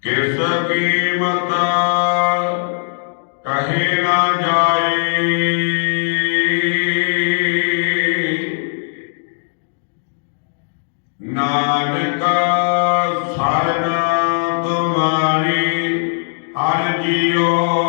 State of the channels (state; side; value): silent; right; digital silence